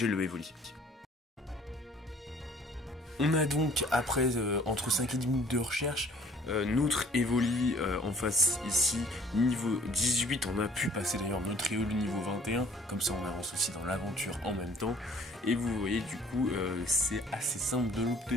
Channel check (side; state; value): both; normal; correlation 0.55